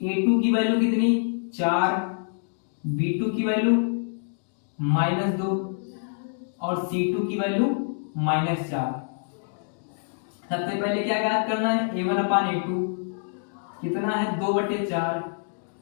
a2 की वैल्यू कितनी 4, b2 की वैल्यू -2 और c2 की वैल्यू -4। सबसे पहले क्या ज्ञात करना है a1 अपान a2 कितना है 2/4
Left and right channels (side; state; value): right; silent; digital silence